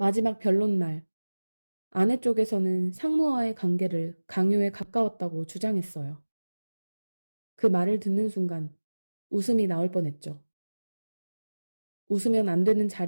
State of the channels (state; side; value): inverted; both; correlation -1.00